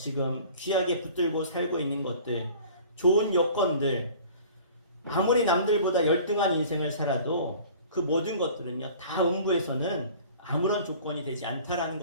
귀하게 붙들고 살고 있는 것들, 좋은 여건들, 아무리 남들보다 열등한 인생을 살아도 그 모든 것들은요, 다 음부에서는 아무런 조건이 되지 않다라는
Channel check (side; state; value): both; inverted; correlation -0.46